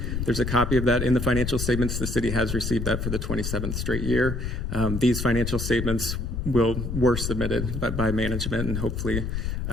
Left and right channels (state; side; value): noise; left; rumble, 3 dB below the sound